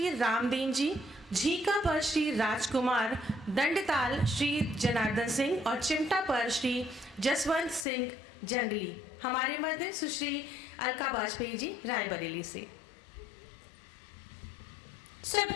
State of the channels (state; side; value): drops out; right; at 7.9 s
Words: रामदीन जी, झीका पर श्री राजकुमार, दंडताल श्री जनार्दन सिंह और चिमटा पर श्री जसवंत सिंह जंगली। हमारे मध्य सुश्री अलका वाजपेयी जी रायबरेली से।